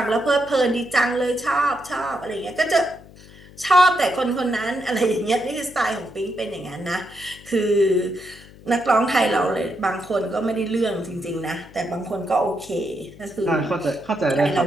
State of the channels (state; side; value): noise; left; hum, 21 dB below the sound